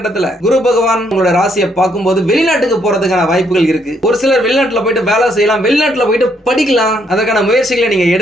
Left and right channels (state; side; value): normal; both; correlation 0.72